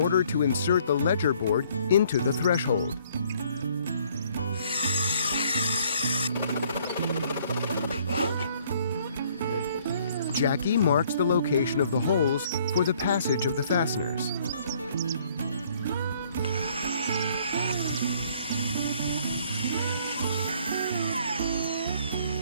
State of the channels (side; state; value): both; inverted; correlation -0.62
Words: to insert the ledger board into the threshold. Jacky marks the location of the holes for the passage of the fasteners.